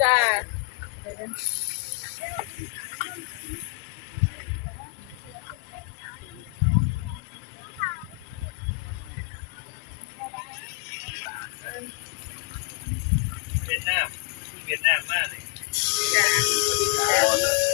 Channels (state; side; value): quieter; right; 27.7 dB